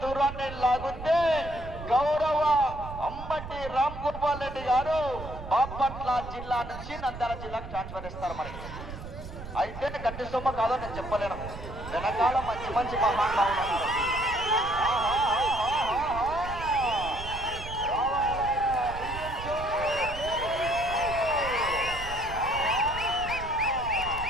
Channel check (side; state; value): right; noise; rumble, 11 dB below the sound